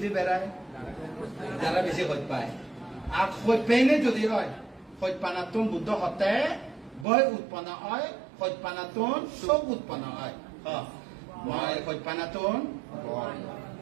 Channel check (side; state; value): left; drops out; at 7.1 s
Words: বেড়ায় যারা বেশি হইত পায় আর হইত পেনে যদি হয় হইত পানাতুন বুদ্ধ হতে বয় উৎপন্ন হয় হইত পানাতুন সব উৎপন্ন হয় মই হইত পানাতুন